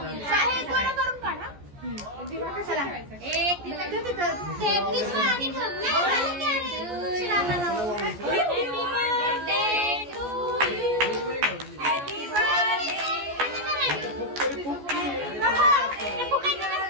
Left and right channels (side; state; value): left; late; 14 ms